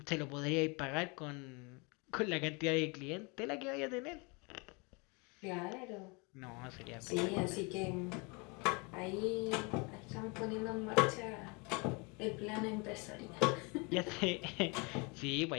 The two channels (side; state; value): right; quieter; 29.9 dB